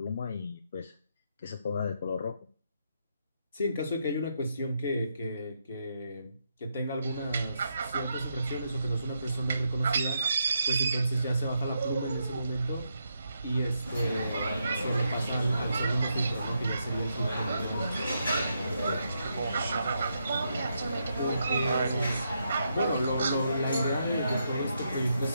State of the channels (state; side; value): inverted; both; correlation -0.80